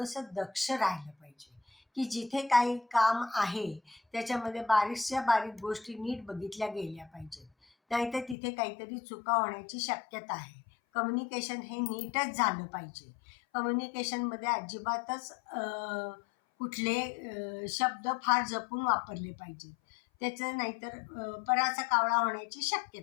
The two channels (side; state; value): right; drops out; at 8.3 s